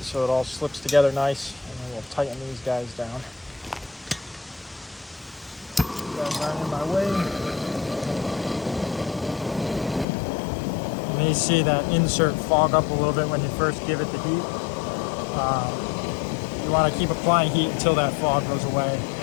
so it all slips together nice. And then we'll tighten these guys down. These guys aren't in my way. You may see that insert fog up a little bit when you first give it the heat. You want to keep applying heat until that fog goes away,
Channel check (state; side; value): drops out; right; at 10.1 s